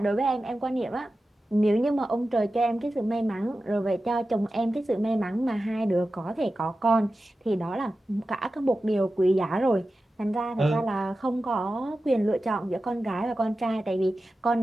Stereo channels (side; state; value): both; normal; correlation 0.93